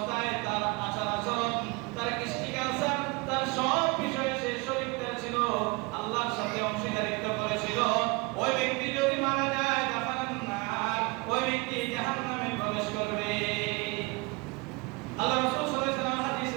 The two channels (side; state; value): left; quieter; 27.4 dB